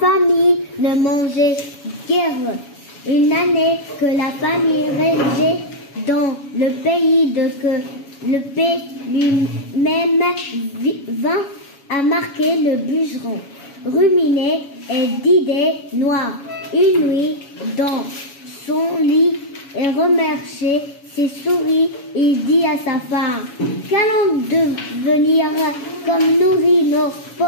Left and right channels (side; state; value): right; late; 7.2 ms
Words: ne mangeait guère. Une année que la famille régnait dans le pays le paix lui-même vint à marquer le bûcheron, ruminé et d'idées noires. Une nuit, dans son lit et remerciait ses souris, il dit à sa femme: qu'allons devenir comme nourrir nos